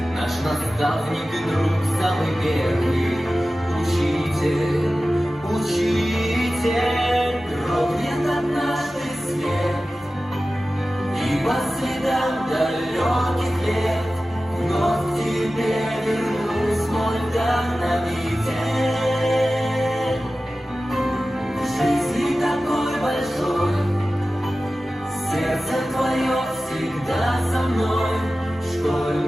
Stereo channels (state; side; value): normal; both; correlation 0.95